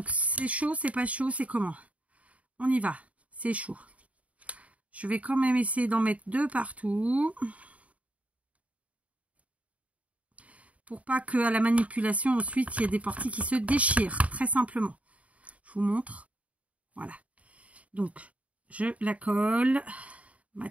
c'est chaud, c'est pas chaud, c'est comment? On y va. C'est chaud. Je vais quand même essayer d'en mettre 2 partout. Pour pas qu'à la manipulation, ensuite, il y ait des parties qui se déchirent. Très simplement. Je vous montre. Voilà. Donc, je la colle. Ma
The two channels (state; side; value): late; left; 0.067 ms